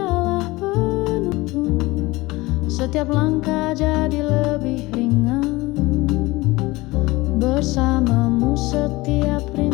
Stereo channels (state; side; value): quieter; right; 21.1 dB